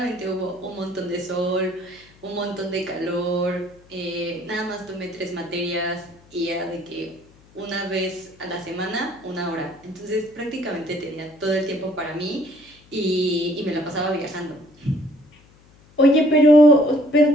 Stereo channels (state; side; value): noise; left; hum, 27 dB below the sound